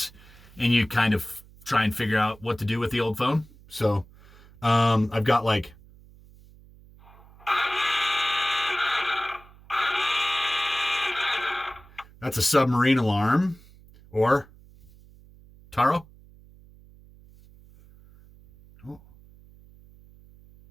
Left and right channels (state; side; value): noise; right; hum, 24 dB below the sound